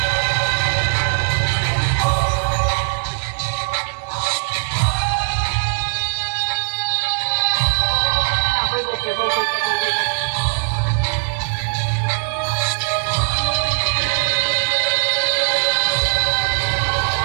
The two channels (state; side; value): silent; left; digital silence